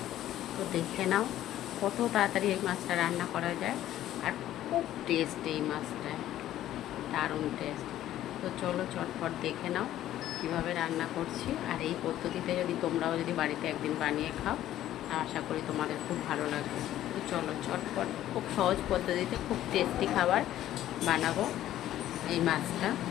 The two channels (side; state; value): right; quieter; 12.9 dB